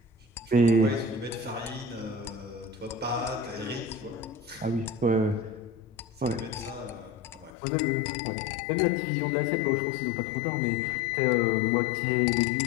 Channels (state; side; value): drops out; right; at 7.5 s